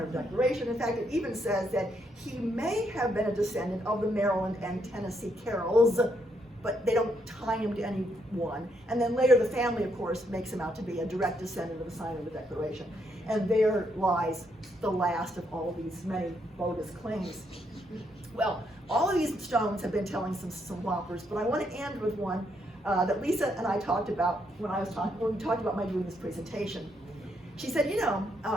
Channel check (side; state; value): both; normal; correlation 0.75